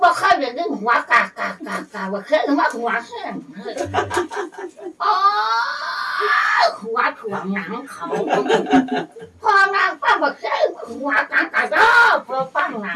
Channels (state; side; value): identical; both; correlation 1.00